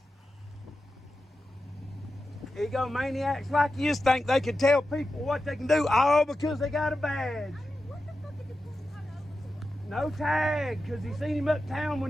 Egomaniacs like you think they can tell people what they can do all because they got a badge. What the fuck did you pull him over? No tag, because he seen him uptown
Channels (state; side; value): normal; both; correlation 0.91